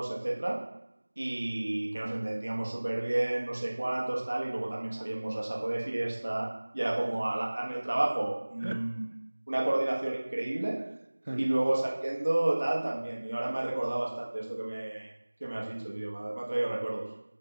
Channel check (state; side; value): inverted; both; correlation -1.00